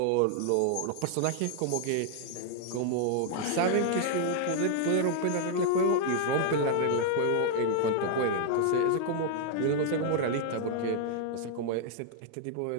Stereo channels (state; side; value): different; both; correlation -0.01